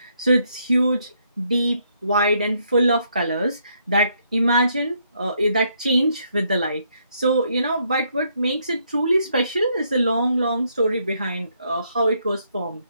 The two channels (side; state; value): both; inverted; correlation -0.73